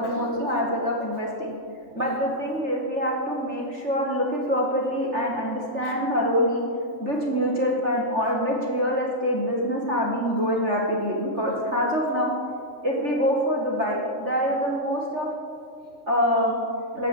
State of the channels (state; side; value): late; left; 3.3 ms